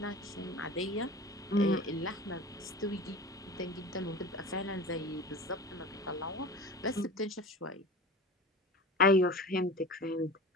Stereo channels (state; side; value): normal; both; correlation 0.35